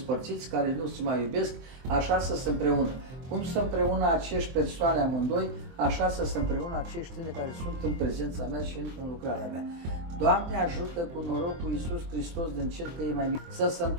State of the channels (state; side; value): late; left; 23 ms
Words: care nu se mai iubesc, așa să se împreună. Cum să împreună acești persoane amândoi, așa să se împreună acești tine care sunt în prezența mea și în lucrarea mea. Doamne, ajută cu norocul Iisus Hristos din cer că e mai mic, să se